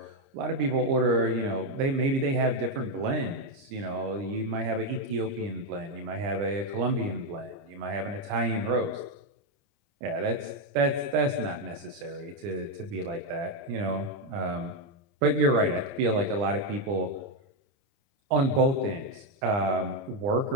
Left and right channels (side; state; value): left; late; 30 ms